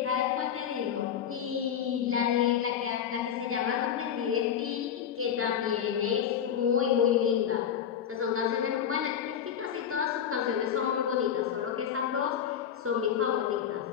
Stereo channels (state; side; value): quieter; right; 8.8 dB